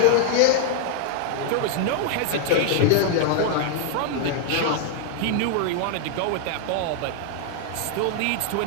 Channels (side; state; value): both; different; correlation 0.00